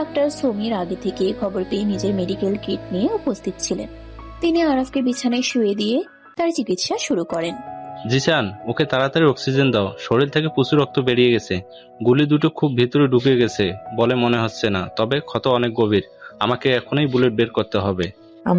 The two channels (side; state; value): both; identical; correlation 1.00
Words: সমীর আগে থেকে খবর পেয়ে নিজের মেডিকেল কিট নিয়ে উপস্থিত ছিলেন। তিনি আরাফকে বিছানায় শুয়ে দিয়ে তার চিকিৎসা শুরু করেন। জিসান, ওকে তাড়াতাড়ি অক্সিজেন দাও, শরীর থেকে প্রচুর রক্ত বেরিয়ে গেছে, গুলি দুটো খুব ভিতরে ঢুকে গেছে বলে মনে হচ্ছে না, তবে ক্ষত অনেক গভীর, আমাকে এখনই বুলেট বের করতে হবে।